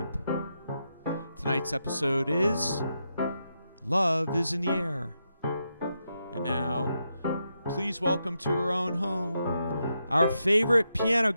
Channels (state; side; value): inverted; both; correlation -0.84